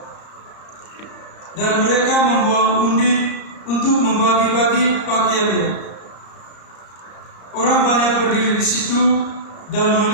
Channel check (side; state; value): right; late; 34 ms